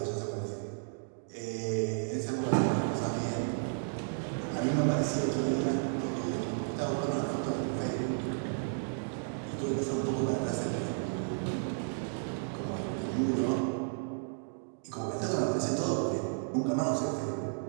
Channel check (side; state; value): left; silent; digital silence